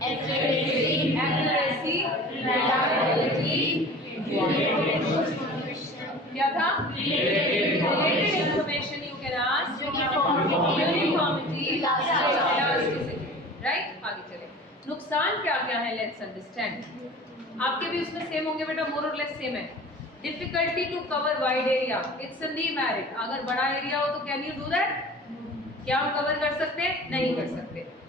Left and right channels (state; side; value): normal; both; correlation 0.40